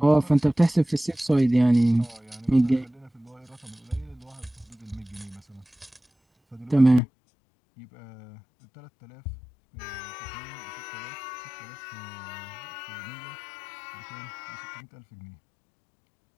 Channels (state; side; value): drops out; right; at 7.0 s